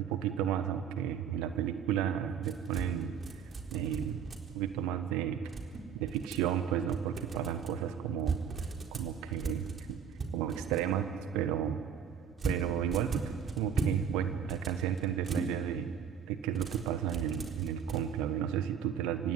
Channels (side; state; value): left; quieter; 8.0 dB